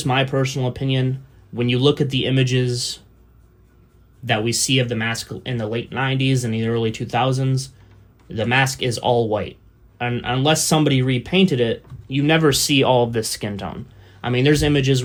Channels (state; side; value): identical; both; correlation 1.00